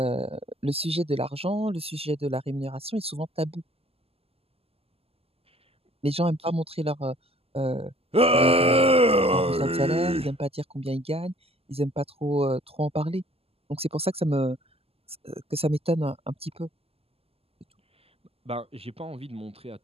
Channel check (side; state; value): left; late; 0.29 ms